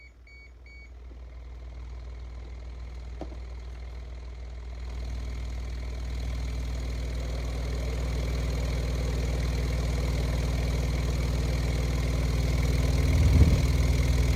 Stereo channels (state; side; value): identical; both; correlation 1.00